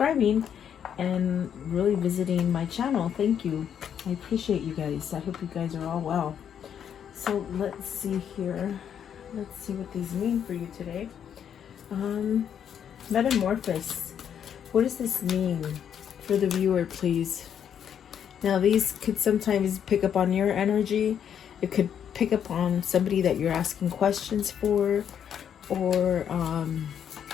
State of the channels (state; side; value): quieter; right; 8.7 dB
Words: and really visiting my channel. Thank you. I appreciate you guys. I hope you guys are all well. So let's see here. Let's see what these mean for you today. Metamorphosis. What does this mean for the viewer, please? Now, these could sometimes pick up on your energy. It could pick up on somebody that you're asking questions for, or